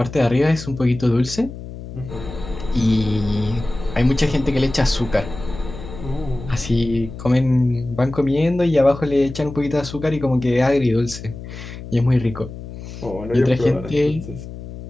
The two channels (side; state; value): left; noise; hum, 12 dB below the sound